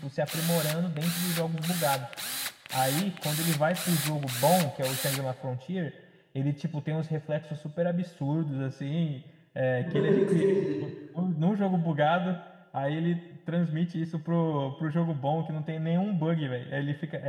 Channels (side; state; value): both; identical; correlation 1.00